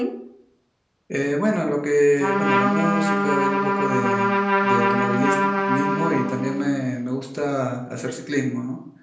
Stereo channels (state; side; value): identical; both; correlation 1.00